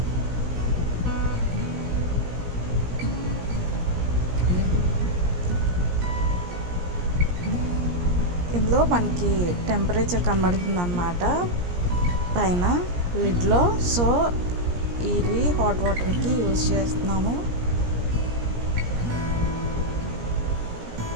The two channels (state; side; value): late; left; 17 ms